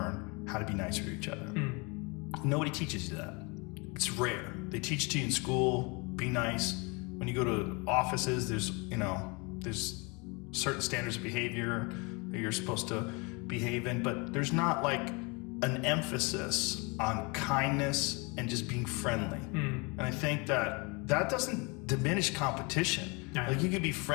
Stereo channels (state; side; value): quieter; right; 29.3 dB